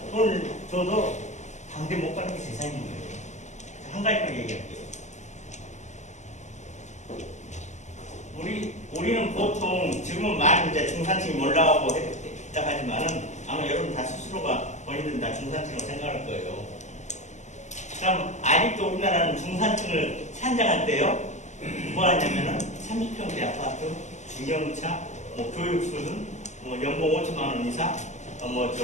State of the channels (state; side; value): late; right; 0.34 ms